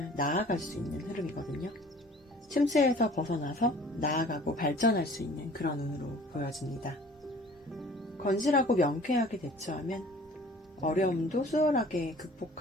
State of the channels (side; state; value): both; normal; correlation 0.49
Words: 나아갈 수 있는 흐름이거든요. 침체에서 벗어나서 나아가고 발전할 수 있는 그런 운으로 보여집니다. 건실하고 명쾌하게 대처하면 어려움도 수월하게